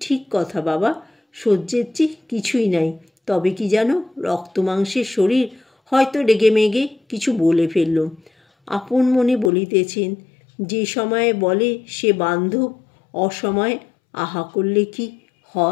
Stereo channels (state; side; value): drops out; right; at 9.5 s